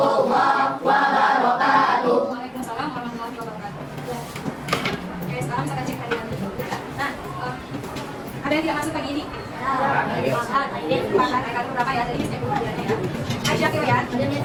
wabarakatuh. Waalaikumsalam warahmatullahi wabarakatuh. Oke, sekarang kita cek hadiah dulu. Nah, ada yang tidak masuk pagi ini? Akan berapa ya? Jadi saya buka hadiahnya ya. Aisyah Kirian,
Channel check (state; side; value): identical; both; correlation 1.00